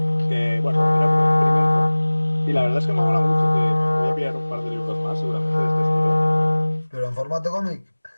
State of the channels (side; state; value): both; inverted; correlation -1.00